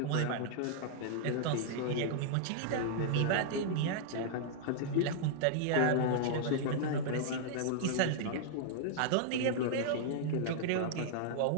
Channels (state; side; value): different; both; correlation -0.01